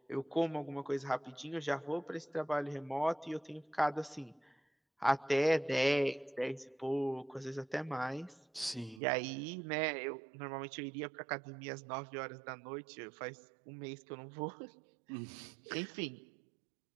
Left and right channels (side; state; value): left; drops out; at 9.0 s